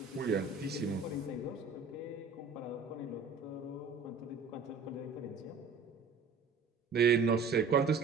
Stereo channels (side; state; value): left; quieter; 4.8 dB